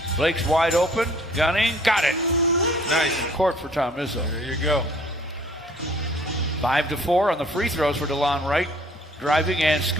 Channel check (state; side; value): normal; both; correlation 0.56